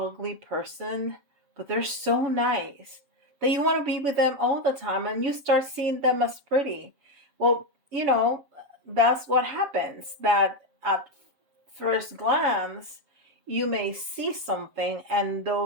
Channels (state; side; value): late; left; 7.4 ms